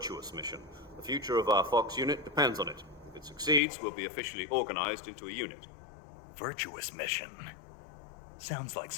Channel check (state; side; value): drops out; right; at 3.6 s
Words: mission. The future of our Fox unit depends on it. If it succeeds, we'll be officially organized into a unit. Virtuous mission? Sounds like